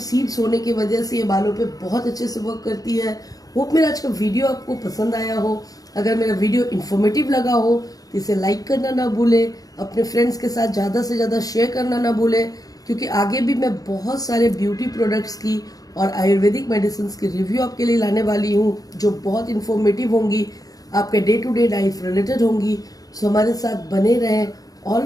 होने की वजह से ये बालों पे बहुत अच्छे से वर्क करती है। होप मेरा आज का वीडियो आपको पसंद आया हो। अगर मेरा वीडियो इन्फॉर्मेटिव लगा हो तो इसे लाइक करना ना भूलें, अपने फ्रेंड्स के साथ ज़्यादा से ज़्यादा शेयर करना ना भूलें, क्योंकि आगे भी मैं बहुत सारे ब्यूटी प्रोडक्ट्स की और आयुर्वेदिक मेडिसिन की रिव्यू आपके लिए लाने वाली हूँ जो बहुत इन्फॉर्मेटिव होंगी, आपके day to day life related होंगी। सो हमारे साथ बने रहें।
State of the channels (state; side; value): late; right; 0.18 ms